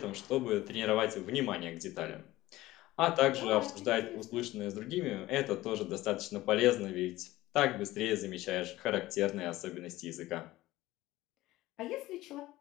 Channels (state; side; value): quieter; right; 17.2 dB